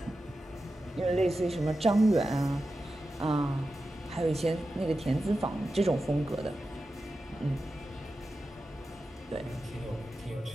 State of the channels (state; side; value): normal; both; correlation 0.92